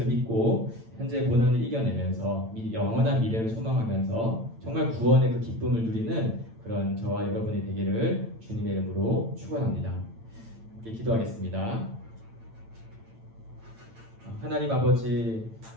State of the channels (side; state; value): left; late; 8.9 ms